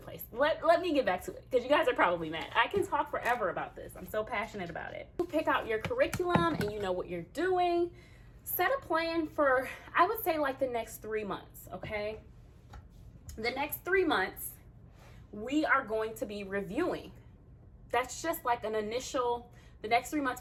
Let me get back to it, because you guys are probably mad. I can talk forever about this. I'm so passionate about it. You pick out your curriculum and you know what you're doing. Set a plan for, I would say, like the next 3 months, okay? The next 3 months, we are going to be reviewing. That's just like an initial, the next 3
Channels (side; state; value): both; identical; correlation 1.00